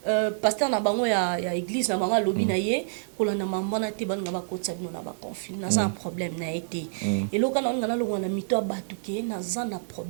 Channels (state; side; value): silent; left; 60 dB below the other